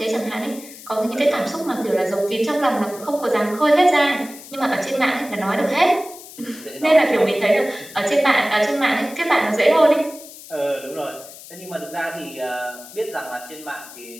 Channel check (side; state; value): left; noise; hiss, 17 dB below the sound